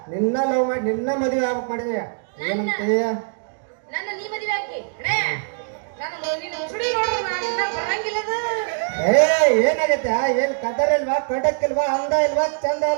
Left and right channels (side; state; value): left; silent; digital silence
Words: ನಿನ್ನ ಲವ್ ಮಾಡಿ ನಿನ್ನ ಮದುವೆ ಆಗ್ಬೇಕು ಮಾಡಿದೆ ಏನಂತೀಯ ನನ್ನ ನೀ ಮದುವೆ ಹಾಕಿ ಅಣೇ ನಾನು ನಿನ್ನ ಸುಡಿ ನೋಡು ನಾನು ಇನ್ನ ಬರಂಗಿಲ್ಲ ಏ ಏನಾಗತ್ತೆ ಏನ್ ಕದರ್ ಇಲ್ವಾ ಕಡಕ್ ಇಲ್ವಾ ಅಂದ ಇಲ್ವಾ ಚಂದ